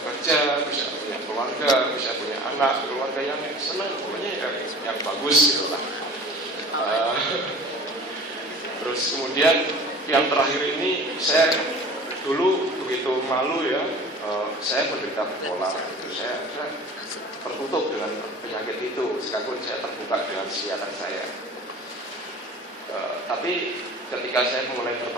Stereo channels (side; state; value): both; normal; correlation 0.42